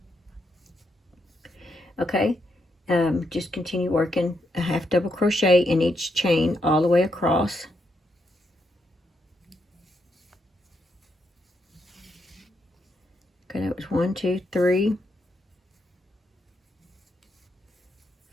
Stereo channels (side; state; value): both; normal; correlation 0.80